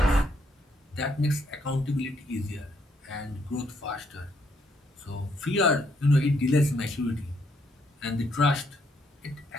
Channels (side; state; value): both; normal; correlation 0.72